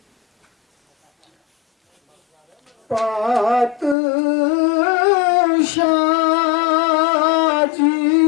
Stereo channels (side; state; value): right; drops out; at 4.0 s